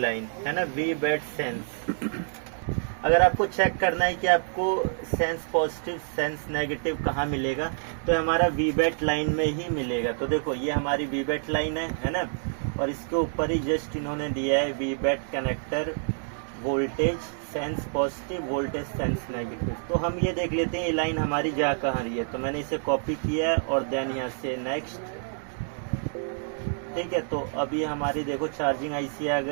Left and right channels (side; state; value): left; silent; digital silence